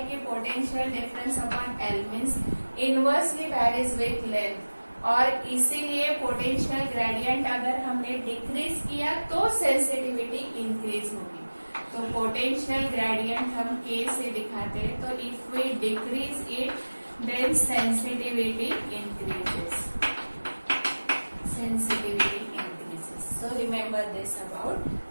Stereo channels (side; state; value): both; inverted; correlation -1.00